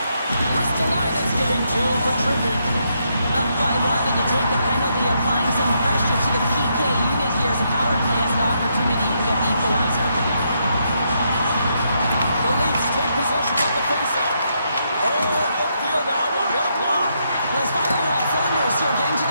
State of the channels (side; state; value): both; inverted; correlation -0.78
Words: Ristolainen's getting two for tripping. Up by one, and you take the penalty, applying some pressure to the PK unit here as a power play has an opportunity to get the equalizer. The Leafs take possession on the faceoff. Oh, he'll feel that one. What a block. Well, he's firing on all cylinders here, getting to